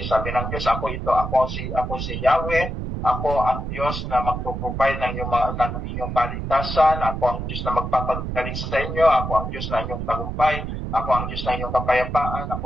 Sabi ng Diyos, ako ito, ako si Yahweh, ako ang Diyos na magpo-provide ng inyong kaligtasan, ako ang Diyos na magpapagaling sa inyo, ako ang Diyos na inyong tagumpay, ako ang Diyos na inyong kapayapaan, ako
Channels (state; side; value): noise; right; rumble, 5 dB below the sound